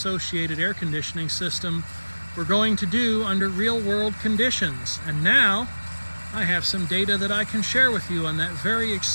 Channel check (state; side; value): inverted; both; correlation -1.00